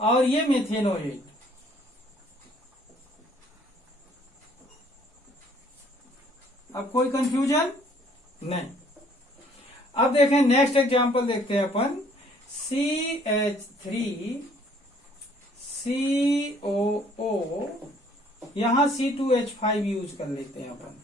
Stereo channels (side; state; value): both; normal; correlation 0.60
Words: ये मेथेनोएट। अब कोई कंफ्यूजन नहीं। अब देखें नेक्स्ट एग्जांपल देखते हैं अपन, CH3COO, यहां C2H5 यूज कर लेते हैं अपन।